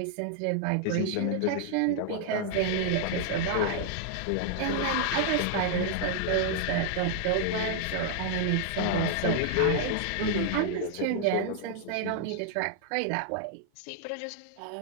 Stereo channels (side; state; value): both; different; correlation 0.00